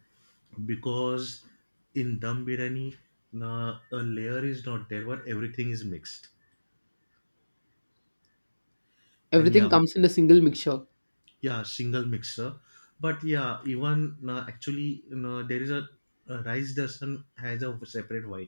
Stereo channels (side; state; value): both; inverted; correlation -1.00